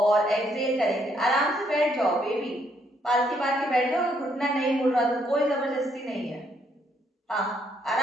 एक्सहेल करेंगे। आराम से बैठ जाओ बेबी, पालथी मार के बैठ जाओ। घुटना नहीं मुड़ रहा तो कोई जबरदस्ती नहीं है। हाँ,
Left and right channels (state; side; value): normal; both; correlation 0.71